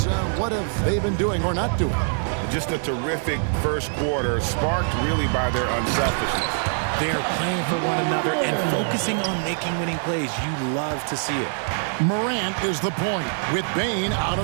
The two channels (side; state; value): left; silent; 63 dB below the other